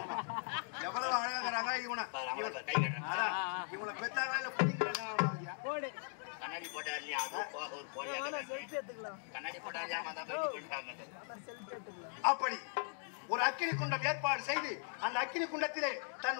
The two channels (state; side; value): silent; right; 52 dB below the other